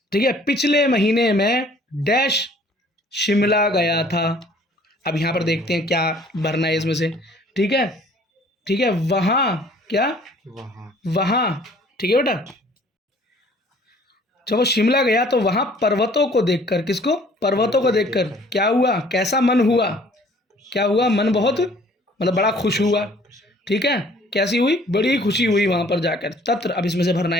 ठीक है। पिछले महीने में डैश शिमला गया था। अब यहाँ पर देखते हैं क्या भरना है इसमें से, ठीक है? ठीक है, वहाँ, क्या? वहाँ, ठीक है बेटा? जब वो शिमला गया तो वहाँ पर्वतों को देखकर, किसको? पर्वतों को देखकर क्या हुआ? कैसा मन हुआ? क्या हुआ? मन बहुत, मतलब बड़ा खुश हुआ, ठीक है? कैसी हुई? बड़ी खुशी हुई वहाँ पर जाकर। तत्र, अब इसमें से भरना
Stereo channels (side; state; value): both; normal; correlation 0.55